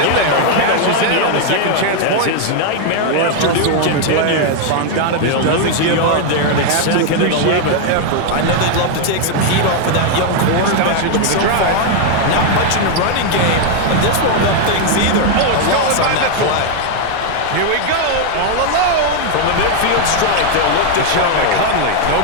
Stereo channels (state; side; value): different; both; correlation 0.00